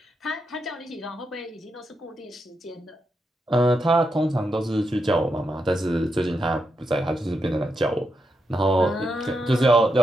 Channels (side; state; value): both; normal; correlation 0.84